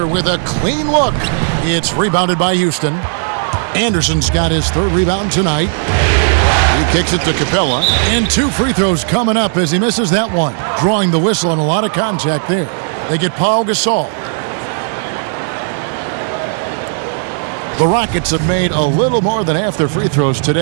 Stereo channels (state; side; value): silent; left; digital silence